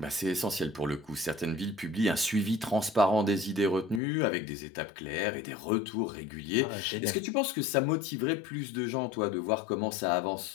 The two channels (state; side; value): drops out; right; at 4.0 s